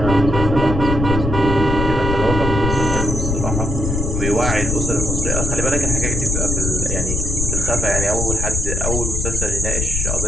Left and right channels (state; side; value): noise; left; rumble, 1 dB below the sound